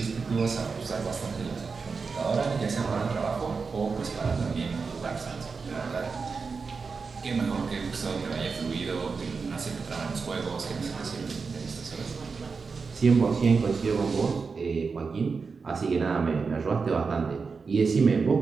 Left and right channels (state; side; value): quieter; left; 4.9 dB